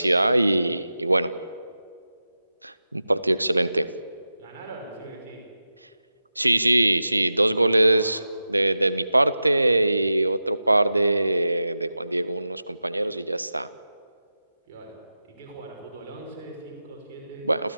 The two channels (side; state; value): both; inverted; correlation -0.93